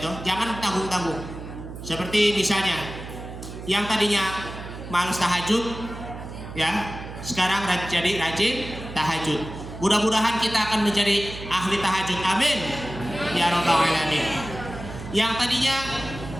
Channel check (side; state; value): right; noise; hum, 11 dB below the sound